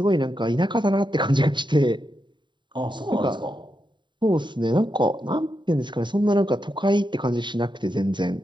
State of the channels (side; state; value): left; late; 0.23 ms